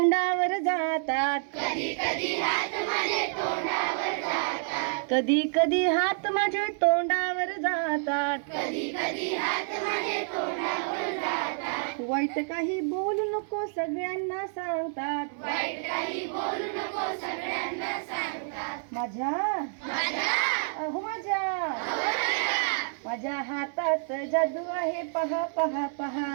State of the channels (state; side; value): silent; left; 59 dB below the other